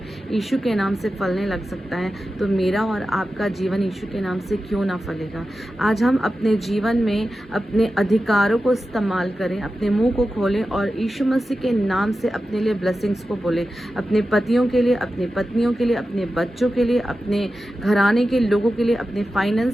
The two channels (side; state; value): both; normal; correlation 0.92